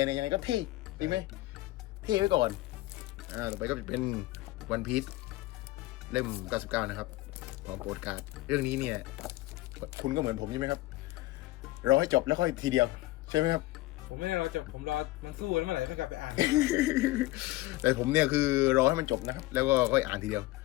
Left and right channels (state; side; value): quieter; right; 18.4 dB